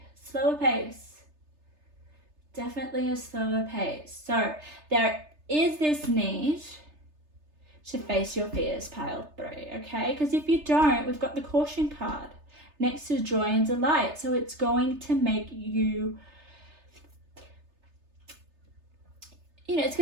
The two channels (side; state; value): left; late; 3.3 ms